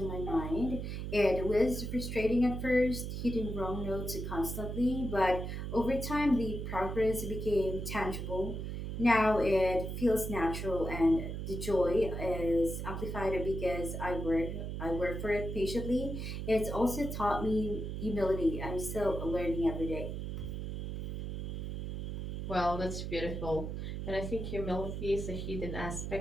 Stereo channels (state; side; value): noise; right; hum, 4 dB below the sound